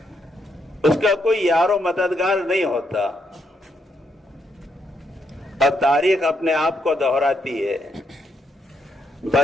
اس کا کوئی یار و مددگار نہیں ہوتا اور تاریخ اپنے آپ کو دہراتی ہے.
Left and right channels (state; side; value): normal; both; correlation 0.77